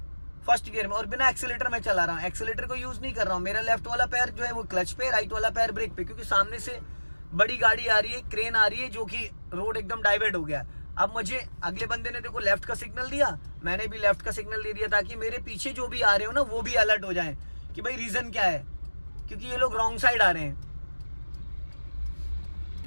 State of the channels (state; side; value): inverted; both; correlation -1.00